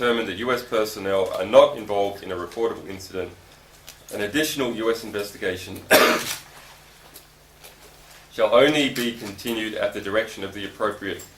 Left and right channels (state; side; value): identical; both; correlation 1.00